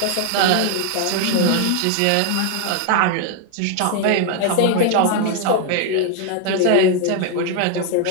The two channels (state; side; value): different; both; correlation 0.00